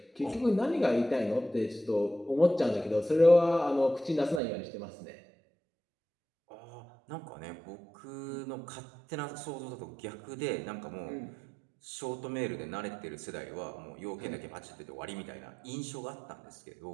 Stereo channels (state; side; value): drops out; left; at 4.4 s